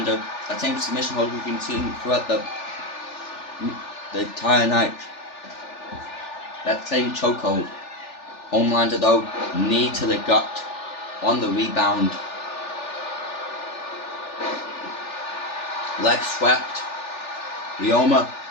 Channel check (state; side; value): late; right; 3.4 ms